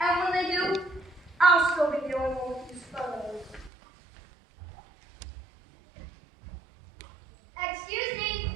And when they do, I'll still be the only one with these photos. Excuse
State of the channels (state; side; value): drops out; left; at 3.7 s